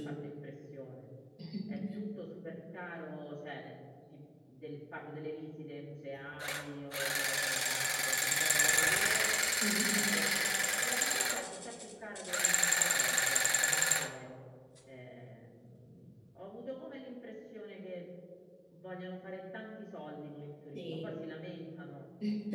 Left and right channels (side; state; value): both; identical; correlation 1.00